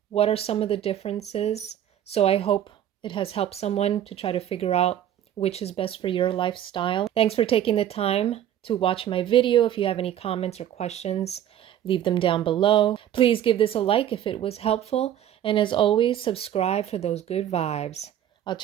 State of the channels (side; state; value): left; quieter; 10.9 dB